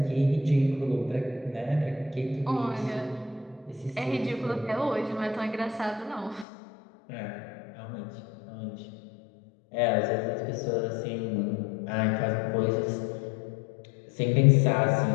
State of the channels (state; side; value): drops out; right; at 6.5 s